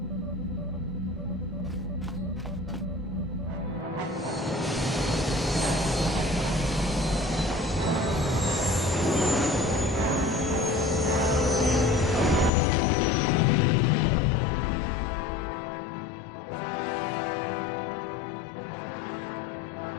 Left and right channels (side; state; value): right; drops out; at 12.5 s